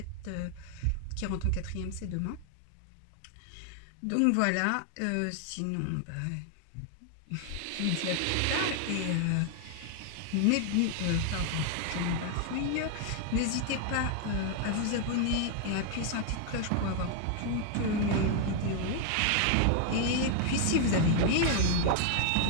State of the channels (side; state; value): both; different; correlation 0.00